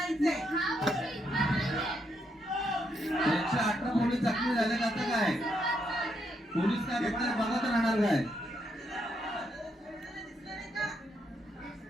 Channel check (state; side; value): normal; both; correlation 0.78